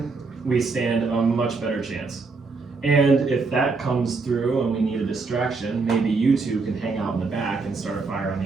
we stand a much better chance. And if that comes through and we need a distraction, maybe you two can hang out in the back and start a fire on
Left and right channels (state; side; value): quieter; left; 4.2 dB